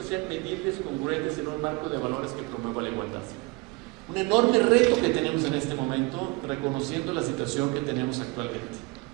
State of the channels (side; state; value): left; quieter; 25.7 dB